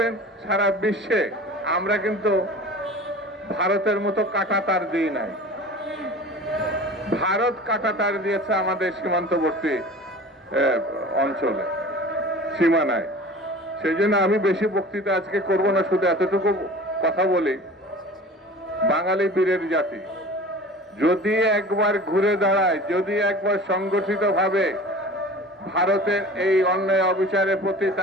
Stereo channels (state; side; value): normal; both; correlation 0.40